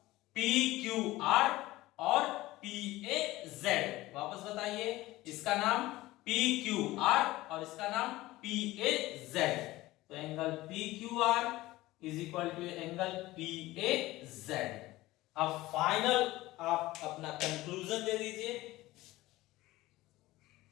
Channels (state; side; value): quieter; right; 18.0 dB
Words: PQR और PAZ। वापस बताइए, इसका नाम PQR और इसका नाम PAZ। तो angle PQR is equal to angle PAZ। अब फाइनल आप अपना कंक्लूजन दे दीजिए।